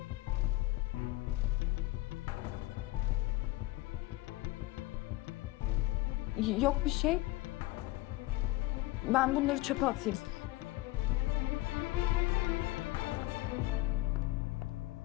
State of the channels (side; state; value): right; quieter; 19.1 dB